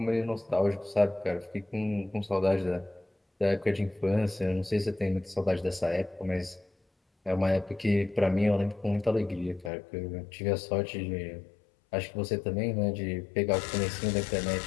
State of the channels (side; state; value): right; drops out; at 9.7 s